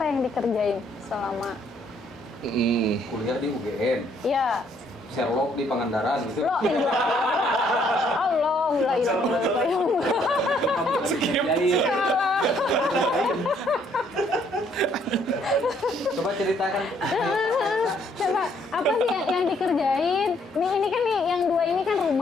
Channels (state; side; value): normal; both; correlation 0.67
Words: yang dikerjain selama Kuliah di UGM, ya Sherlock di Pangandaran gitu. lo Allah, la ilaha illallah. Salah. Coba ceritakan. Coba apa sih yang dikerjain? Ini kan nih yang dua ini kan